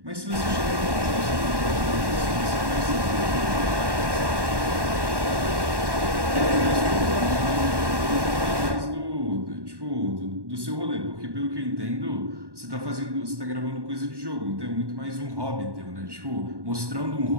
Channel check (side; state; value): left; late; 1.1 ms